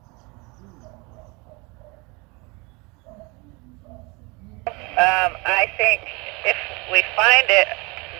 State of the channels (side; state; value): left; quieter; 27.7 dB